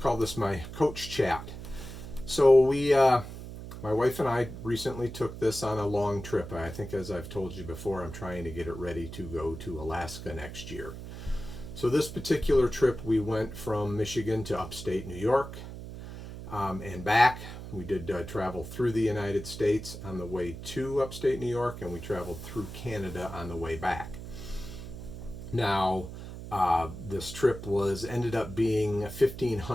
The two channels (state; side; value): noise; right; hum, 10 dB below the sound